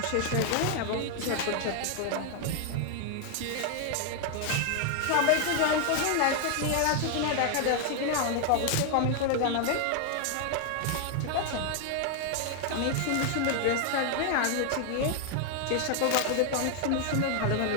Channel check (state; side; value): different; both; correlation 0.00